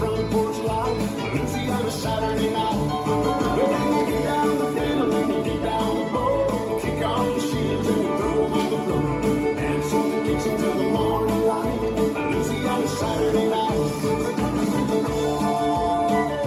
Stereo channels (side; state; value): both; identical; correlation 1.00